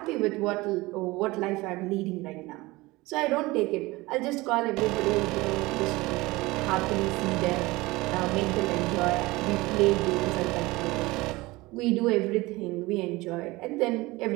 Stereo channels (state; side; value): quieter; left; 21.2 dB